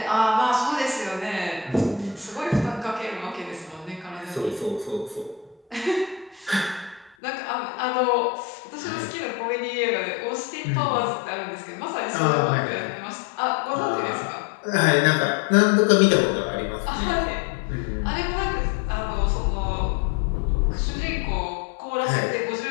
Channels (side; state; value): right; drops out; at 7.2 s